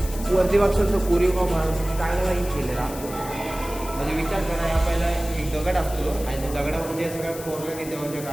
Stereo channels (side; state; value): left; noise; hiss, 13 dB below the sound